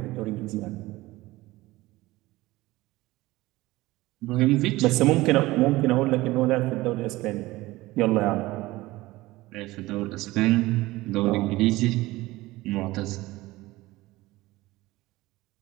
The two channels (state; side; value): quieter; left; 19.0 dB